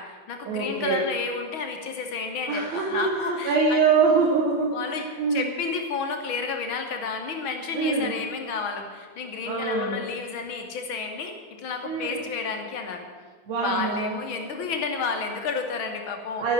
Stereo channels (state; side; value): late; right; 6.2 ms